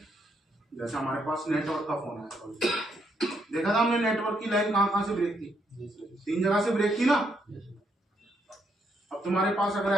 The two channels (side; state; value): both; normal; correlation 0.75